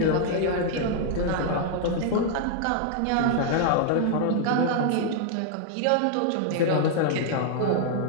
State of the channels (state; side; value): different; both; correlation 0.00